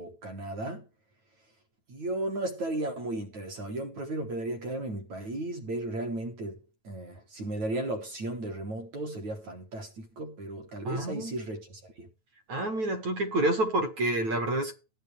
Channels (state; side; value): late; left; 9.2 ms